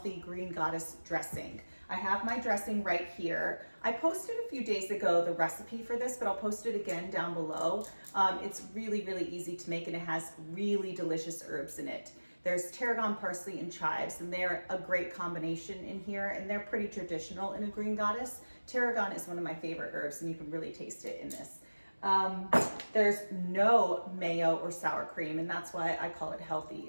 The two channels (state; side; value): inverted; both; correlation -1.00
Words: green goddess dressing. I have my dressing right here. I posted a few days ago the recipe for this, but I'll post it again down below. It's really easy to make and it has really delicious herbs in it. There's tarragon, parsley, and chives, and they're a great combination in here, and they're pretty traditional in a green goddess. Tarragon is one of my favorite herbs, and you can really taste it in this. There's no mayo or sour cream, and that's why I call it healthy.